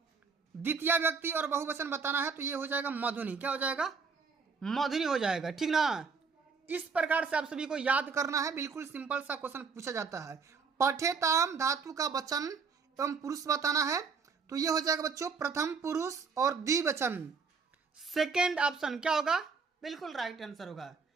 द्वितीय व्यक्ति और बहुवचन बताना है। तो ये हो जाएगा मधुनी। क्या हो जाएगा? मधुनी हो जाएगा, ठीक ना। इस प्रकार से आप सभी को याद करना है, बिल्कुल सिंपल सा क्वेश्चन पूछा जाता है। पठेताम धातु का वचन एवं पुरुष बताना है। तो ये हो जाएगा बच्चों प्रथम पुरुष और द्विवचन। सेकेंड ऑप्शन क्या होगा? बिल्कुल राइट आंसर होगा।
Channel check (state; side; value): quieter; left; 5.2 dB